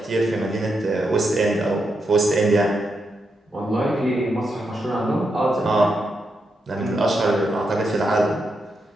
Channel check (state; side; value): normal; both; correlation 0.84